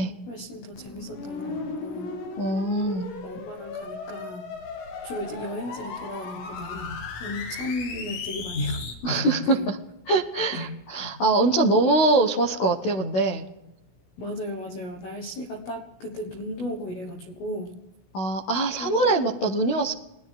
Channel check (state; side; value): late; right; 16 ms